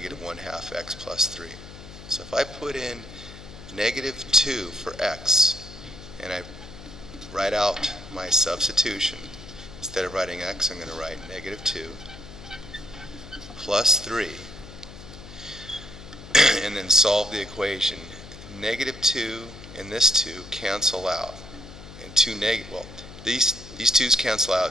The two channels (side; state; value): left; noise; hum, 15 dB below the sound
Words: 1/2 x plus 3. So if I put in negative 2 for x and I write out my substitution, instead of writing x I'm going to write negative 2 plus 3 and then solve the equation. Negative 2 and this 2 cancel out, and these 2's cancel